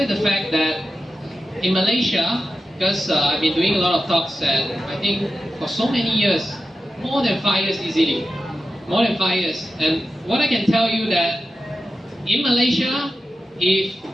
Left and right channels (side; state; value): both; normal; correlation 0.91